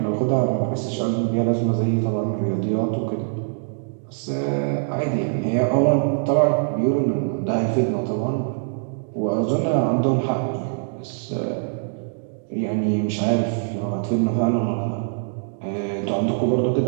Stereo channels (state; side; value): silent; left; digital silence